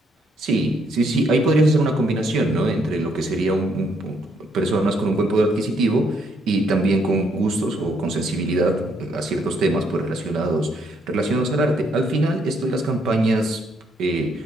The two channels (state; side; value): normal; both; correlation 0.71